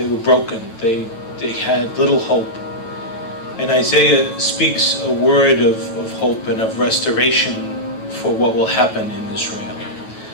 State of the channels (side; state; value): right; late; 9.1 ms